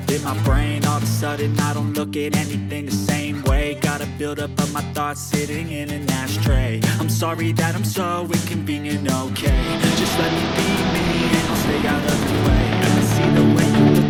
in my brain. All of a sudden I don't look at anything the same way. Gotta build up of my thoughts sitting in an ashtray. I'm sorry that I'm so inconvenient, okay? Just let me be me and I'll stay out of your way. I see the way you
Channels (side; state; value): both; identical; correlation 1.00